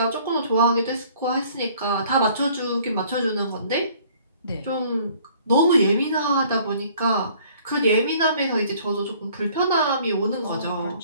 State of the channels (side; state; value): both; inverted; correlation -0.56